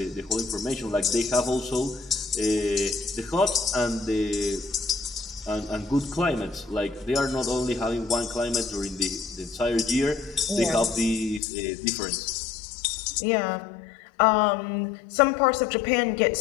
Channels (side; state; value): right; drops out; at 11.4 s